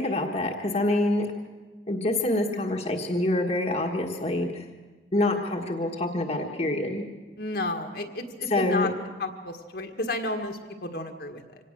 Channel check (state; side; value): normal; both; correlation 0.44